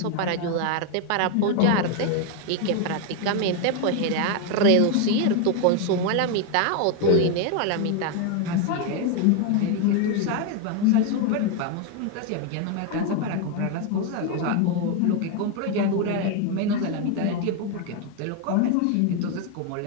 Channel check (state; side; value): different; both; correlation 0.01